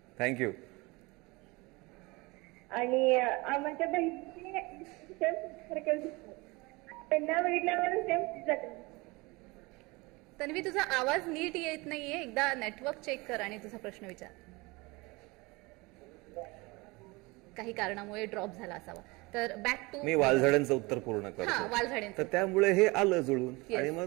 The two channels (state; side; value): quieter; left; 24.5 dB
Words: थँक्यू. आणि आमच्या बहिणीची त्यांना बघितल्यावर सेम जाते. तन्वी, तुझा आवाज नीट येत नाहीये, एकदा नेटवर्क चेक कर आणि तुझा प्रश्न विचार. काही कारणामुळे ड्रॉप झाला असावा. तर बॅक टू मी वालझाडांचं उत्तर पूर्ण करतो. वालझाडांचं. तर त्यामुळे हे आलं जुळून आणि